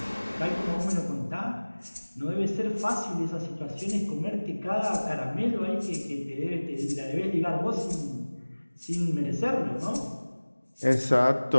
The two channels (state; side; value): inverted; both; correlation -1.00